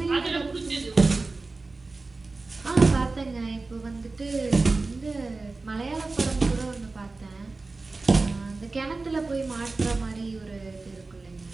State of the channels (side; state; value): left; quieter; 3.6 dB